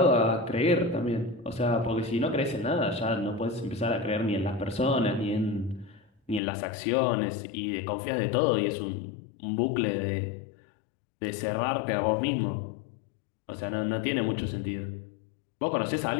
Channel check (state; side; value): drops out; right; at 6.4 s